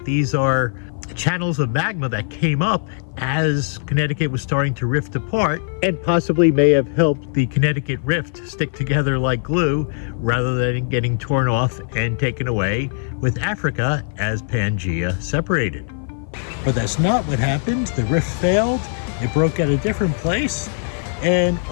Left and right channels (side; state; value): right; silent; 56 dB below the other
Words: these are channels of magma that came up as Connecticut was starting to rift apart, and possibly may have helped the Connecticut rift stick together like glue rather than getting torn off and taken away with Africa as Pangea separated. but that's not what happened. The rift failed, it broke at a different place, and